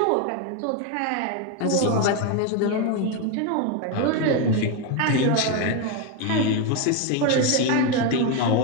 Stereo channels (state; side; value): different; both; correlation 0.02